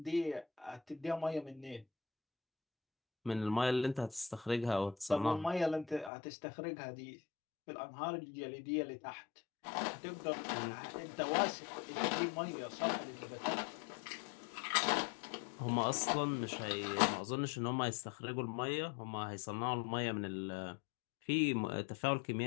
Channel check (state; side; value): drops out; right; at 6.1 s